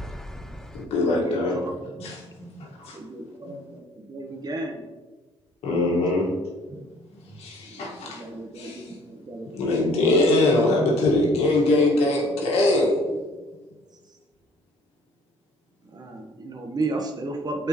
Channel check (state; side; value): normal; both; correlation 0.56